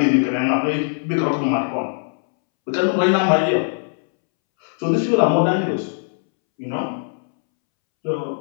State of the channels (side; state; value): right; silent; 65 dB below the other